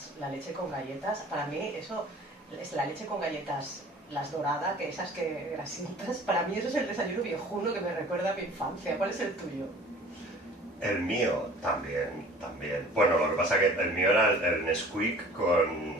leche con galletas. Para mí eso es la leche con galletas, las doradas, que esas que grasientas. Para mí eso es el desayuno viejuno que me recuerda a mi infancia. ¿Cuál es el tuyo? El mío también. Bueno, lo que pasa es que el mío era el Nesquik con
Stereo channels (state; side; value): normal; both; correlation 0.47